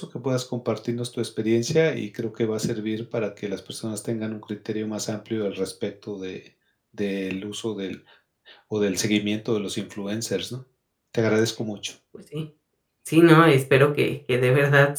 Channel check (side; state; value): both; identical; correlation 1.00